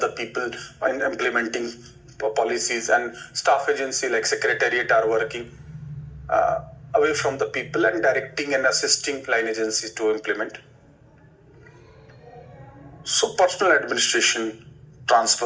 people in implementing policies, and staff agency like secretariat are working away from the people and directing and assisting line agencies to implement. So personal administration,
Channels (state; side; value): identical; both; correlation 1.00